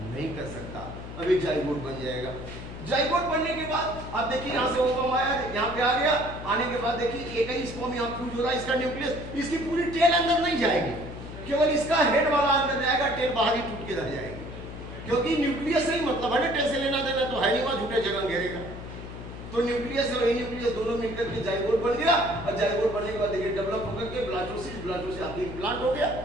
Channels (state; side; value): noise; left; hum, 11 dB below the sound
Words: कर सकता। अब एक जाइगोट बन जाएगा। जाइगोट बनने के बाद अब देखिए यहाँ से ओवम आया, यहाँ पे आ गया। आने के बाद देखिए एक ही स्पर्म यहाँ फ्यूज हो रहा है, इसका न्यूक्लियस, इसकी पूरी टेल अंदर नहीं जाएगी, केवल इसका हेड वाला अंदर जाएगा, टेल बाहर ही टूट के रह जाएगी। क्योंकि न्यूक्लियस से ही मतलब है ना, टेल से लेना देना तो है नहीं, वहां झूठे जगह घेरेगा। तो न्यूक्लियस और न्यूक्लियस दोनों मिलकर के जाइगोट बन गया और जाइगोट बनने के बाद देखिए डेवलप होकर के ब्लास्टोसिस आपके इम्प्लांट हो गया